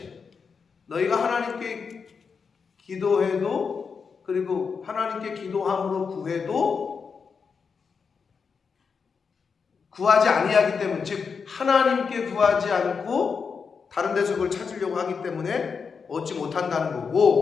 너희가 하나님께 기도해도, 그리고 하나님께 기도함으로 구해도 구하지 아니하기 때문에, 즉 하나님께 구하지 않고 다른 데서 그걸 찾으려고 하기 때문에 얻지 못한다는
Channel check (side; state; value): right; quieter; 5.7 dB